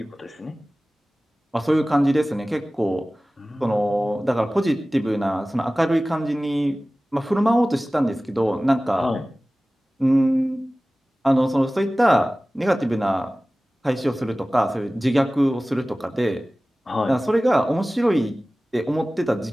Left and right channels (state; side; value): normal; both; correlation 0.97